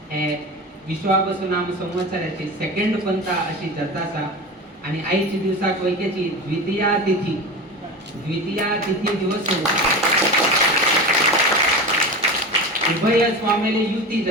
हे विश्वावसु नाम संवत्सराची सेकंड पंथा अशी जातासा आणि आईची दिवसाक वैकेची द्वितीया तिथी दिवस उभय स्वामीले युती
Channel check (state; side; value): normal; both; correlation 0.28